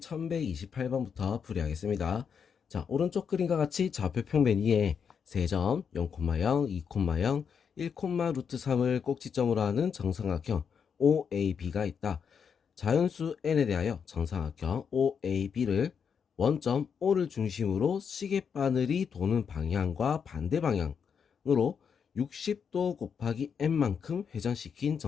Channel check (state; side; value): quieter; right; 6.8 dB